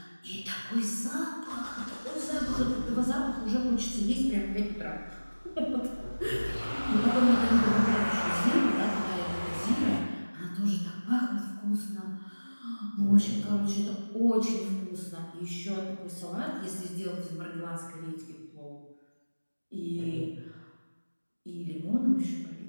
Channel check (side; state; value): both; inverted; correlation -1.00